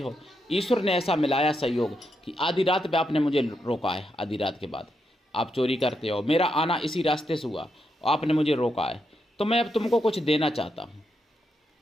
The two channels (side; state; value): both; normal; correlation 0.82